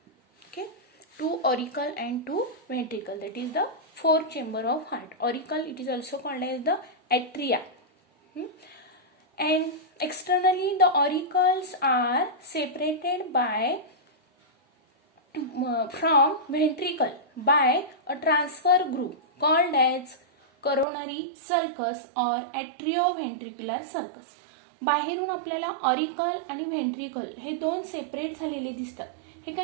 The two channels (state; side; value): drops out; left; at 20.9 s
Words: Okay, 2 auricle and 2 ventricle. That is the 4 chamber of heart. Auricle, it is also called as the atria. And externally the auricles are separated by from ventricle by a transfer group called as coronary sulcus or atrioventricular sulcus. बाहेरून आपल्याला auricle आणि ventricle हे 2 separate झालेले दिसतात. हे